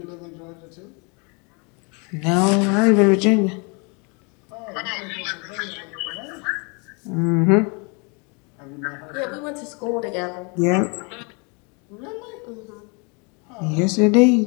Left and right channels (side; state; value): right; quieter; 32.5 dB